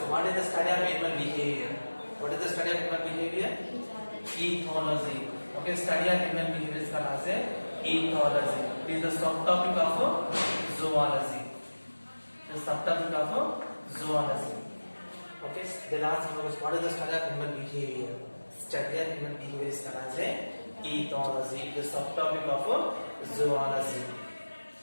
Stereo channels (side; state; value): both; inverted; correlation -1.00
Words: what is the study of animal behavior? What is the study of animal behavior? Ethology. Okay, study of animal behavior is called as ethology. It is the subtopic of zoology. The subtopic of zoology. Okay, the last one was what is the study of animal behavior? Study of animal behavior is called as ethology. The subtopic of zoology.